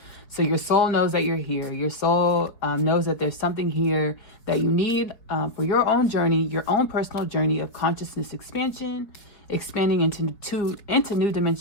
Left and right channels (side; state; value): right; late; 4.9 ms